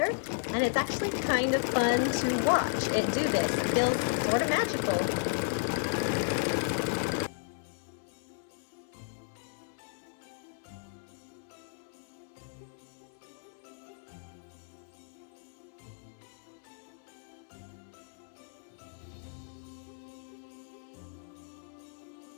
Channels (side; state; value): right; silent; 55 dB below the other